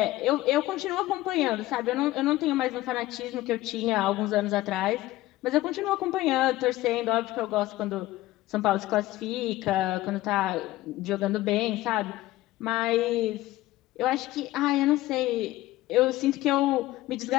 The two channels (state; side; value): quieter; right; 16.9 dB